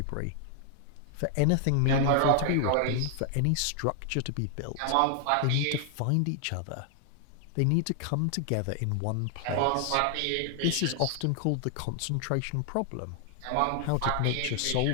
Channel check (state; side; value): different; both; correlation 0.00